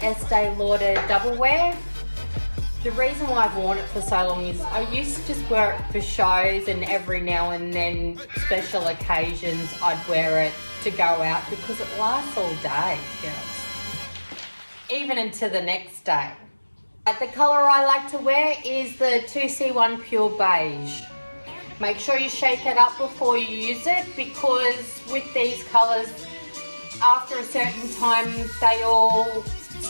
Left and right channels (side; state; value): both; inverted; correlation -1.00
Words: Estee Lauder Double Wear. The reason why I've worn it for so long is I used to just wear it for shows, and every now and then special occasions I'd wear it to go out because it lasts all day, girls. Even into the next day. The colour I like to wear is the 2C1 Pure Beige. Make sure you shake it up before you use it, because with these colours, after a certain time, they all